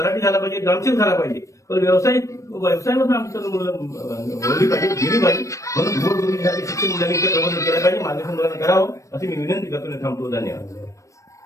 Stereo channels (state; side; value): late; right; 0.15 ms